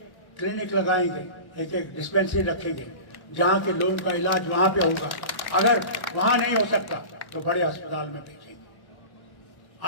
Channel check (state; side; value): late; right; 1.1 ms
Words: क्लिनिक लगाएंगे, एक एक डिस्पेंसरी रखेंगे, जहां के लोगों का इलाज वहां पे होगा। अगर वहां नहीं हो सकता तो बड़े अस्पताल में भेजेंगे।